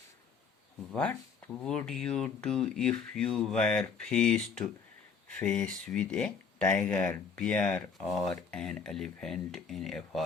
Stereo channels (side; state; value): right; quieter; 5.8 dB